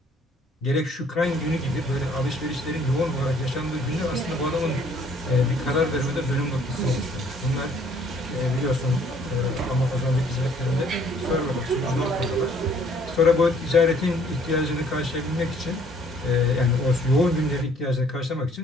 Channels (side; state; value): both; normal; correlation 0.60